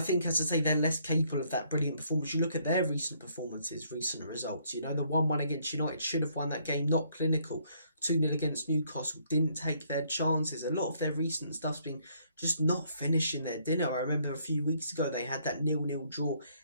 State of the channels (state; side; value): inverted; both; correlation -0.68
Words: as I say, they're less capable of that brilliant performance. You look at their recent performances, recent results. You know, the 1-1 against United should have won that game, not clinical. 2-0 against Newcastle, didn't take their chances. A lot of their recent stuff's been just not finishing their dinner. I remember a few weeks ago they had that 0-0 draw